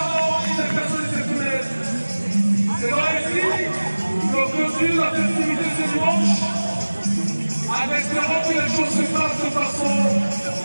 des personnes exceptionnelles. C'est vrai ici qu'on continue la festivité ce dimanche en espérant que les choses se passent de façon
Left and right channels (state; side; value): inverted; both; correlation -1.00